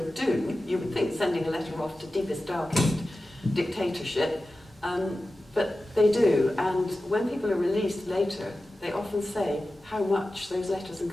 do, you would think sending a letter off to deepest, darkest dictatorship, but they do. And when people are released later, they often say how much those letters and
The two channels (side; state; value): both; normal; correlation 0.94